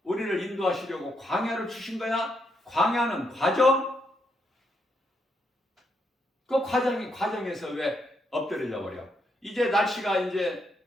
우리를 인도하시려고 광야를 주신 거야. 광야는 과정. 그 과정에서 왜 엎드려 버려? 이제 날씨가 이제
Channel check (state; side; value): normal; both; correlation 0.78